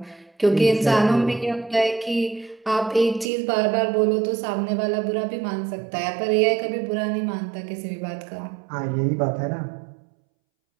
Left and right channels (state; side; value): drops out; left; at 3.2 s